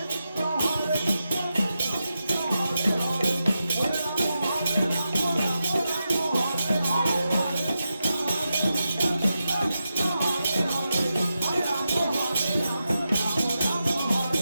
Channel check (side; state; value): both; inverted; correlation -0.89